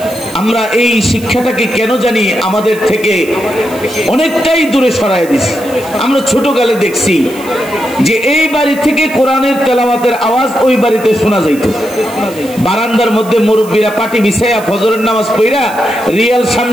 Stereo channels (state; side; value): noise; right; hiss, 18 dB below the sound